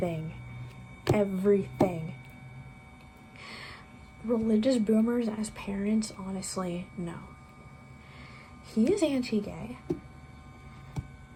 Everything. Religious boomers as parents, honestly, no. He is anti-gay.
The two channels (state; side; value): identical; both; correlation 1.00